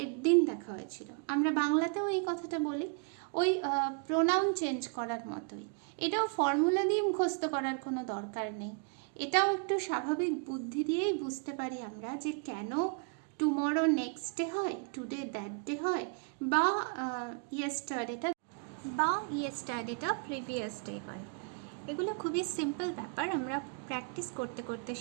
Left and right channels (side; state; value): left; quieter; 38.3 dB